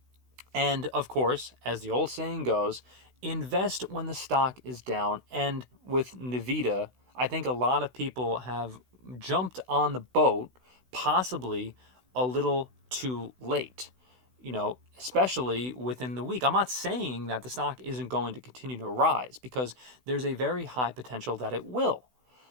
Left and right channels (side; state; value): left; late; 16 ms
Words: And of course, as the old saying goes, invest when the stock is down. And with Nvidia, I think a lot of people have jumped on the boat, possibly a little too late, especially within the week. I'm not saying that the stock isn't going to continue to rise because there's a very high potential that it will.